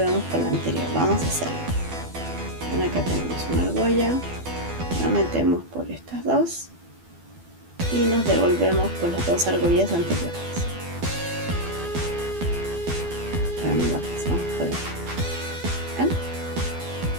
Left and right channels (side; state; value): left; late; 12 ms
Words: con la anterior. Vamos a hacerlo. ¿Ven? Acá tenemos una argolla, la metemos por estas dos y nos devolvemos con las dos argollas anteriores. La pasamos por aquí. ¿Ven?